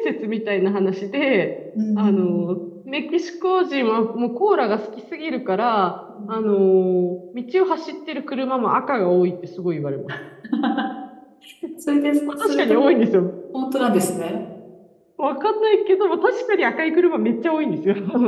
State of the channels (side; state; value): both; identical; correlation 1.00